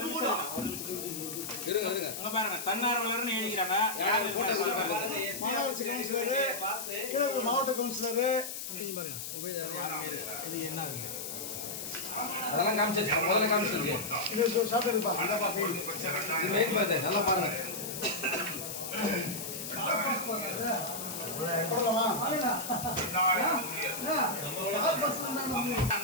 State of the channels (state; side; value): noise; left; hiss, 7 dB below the sound